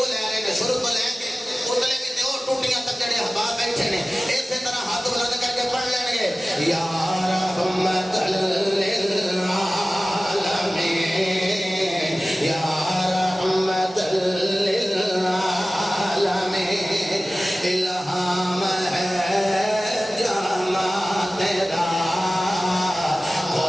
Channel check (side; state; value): both; normal; correlation 0.97